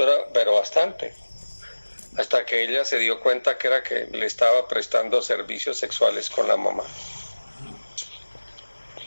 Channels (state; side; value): inverted; both; correlation -1.00